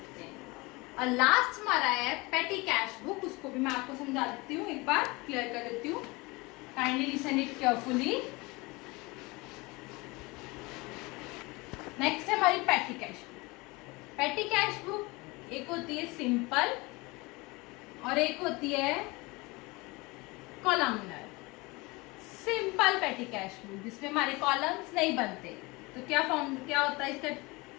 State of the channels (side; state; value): right; quieter; 24.4 dB